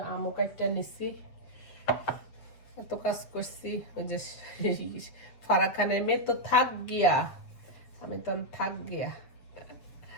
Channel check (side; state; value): right; late; 8.0 ms